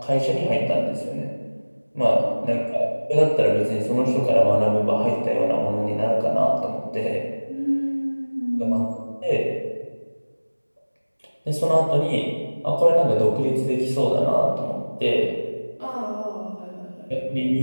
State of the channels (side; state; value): both; inverted; correlation -1.00